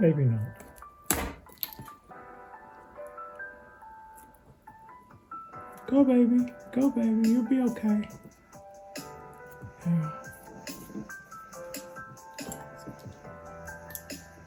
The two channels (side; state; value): both; identical; correlation 1.00